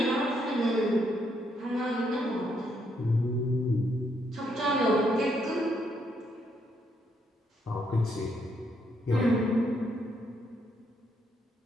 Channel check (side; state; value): both; normal; correlation 0.75